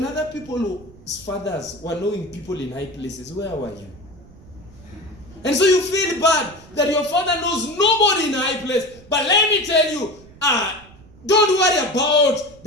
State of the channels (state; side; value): noise; right; rumble, 23 dB below the sound